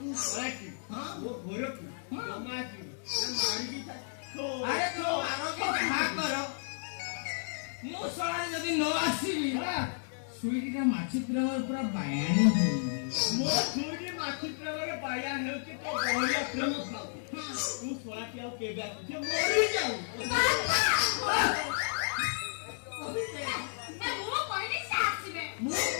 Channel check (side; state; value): right; silent; digital silence